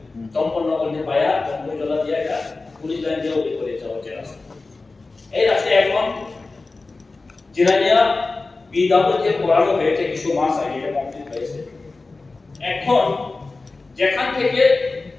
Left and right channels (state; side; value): quieter; right; 3.6 dB